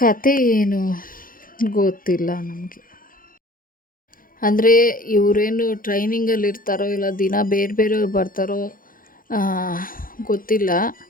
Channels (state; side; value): late; right; 0.41 ms